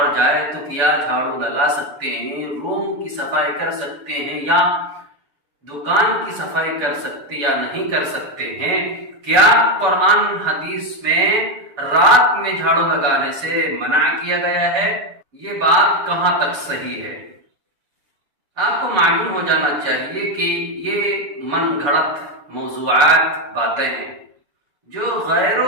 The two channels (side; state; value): left; late; 7.0 ms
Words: جائے تو کیا جھاڑو لگا سکتے ہیں؟ روم کی صفائی کر سکتے ہیں یا دکان کی صفائی کر سکتے یا نہیں کر سکتے ہیں؟ کیا قرآن حدیث میں رات میں جھاڑو لگانے سے منع کیا گیا ہے؟ یہ بات کہاں تک صحیح ہے؟ آپ کو معلوم ہو جانا چاہیے کہ یہ من گھڑت موضوعات باتیں ہیں جو